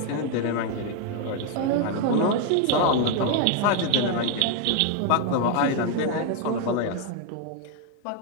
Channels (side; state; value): both; different; correlation 0.00